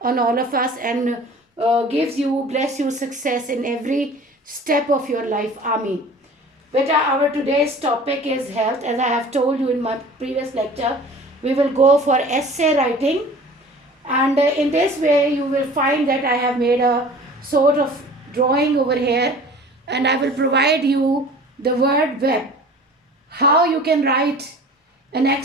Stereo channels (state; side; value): normal; both; correlation 0.44